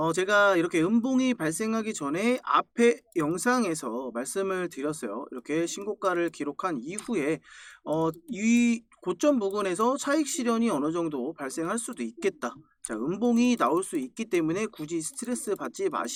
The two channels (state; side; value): identical; both; correlation 1.00